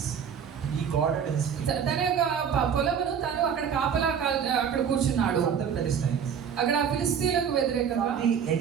తన యొక్క పొలమును తను అక్కడ కాపలా అక్కడ కూర్చున్నాడు. From the Philistines. అక్కడ ఫిలిస్తీయులకు వ్యతిరేకంగా the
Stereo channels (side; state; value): left; quieter; 7.5 dB